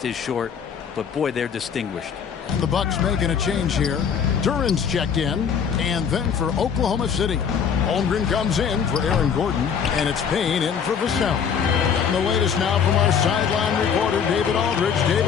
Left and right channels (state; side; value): quieter; right; 7.2 dB